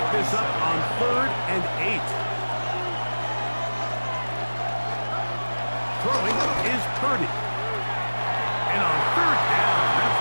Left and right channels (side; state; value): both; inverted; correlation -1.00